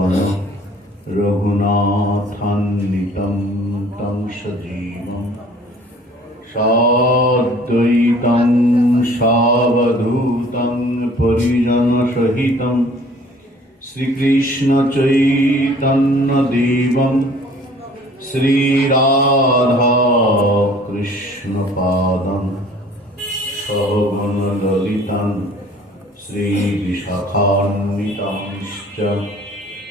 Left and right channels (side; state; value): both; normal; correlation 0.52